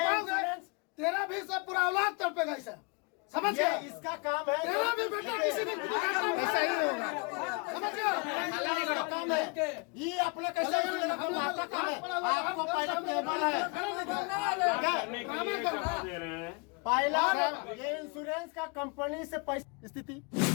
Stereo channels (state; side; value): quieter; right; 31.6 dB